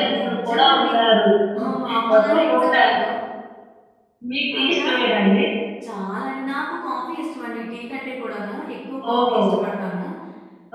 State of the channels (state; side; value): identical; both; correlation 1.00